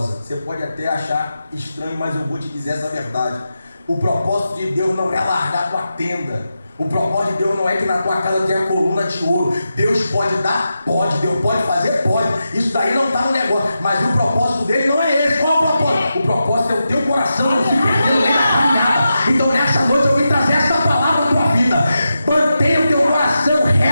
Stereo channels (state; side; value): inverted; both; correlation -0.89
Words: Você pode até achar estranho, mas eu vou te dizer essa verdade. O propósito de Deus não é largar a tua tenda. O propósito de Deus não é que na tua casa tenha coluna de ouro. Deus pode dar? Pode. Deus pode fazer? Pode. Isso daí não está no negócio. Mas o propósito dele não é esse. Qual é o propósito? O propósito é o teu coração não se perdendo nem na caminhada. Então nessa noite eu vim trazer essa palavra à tua vida. Mantenha o teu coração